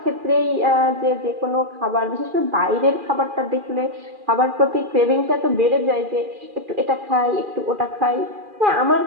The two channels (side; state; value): left; late; 2.4 ms